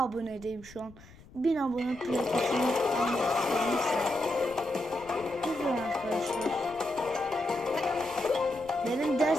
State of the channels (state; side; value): noise; left; rumble, 22 dB below the sound